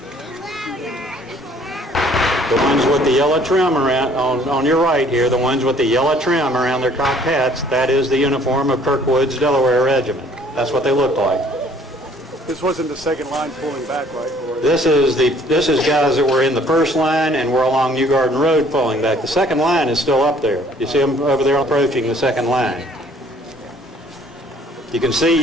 The ones with the yellow trim around, on your right here, the ones with the yellow trim around their cocked hats, that is the uniform of Kirkwood's Delaware Regiment. That's what they looked like. This wasn't the second line pulling back, right? This is guys that were in the first line and were along New Garden Road pulling back. The second line is still up there. You see them over there approaching the second line. You can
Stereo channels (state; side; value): normal; both; correlation 0.58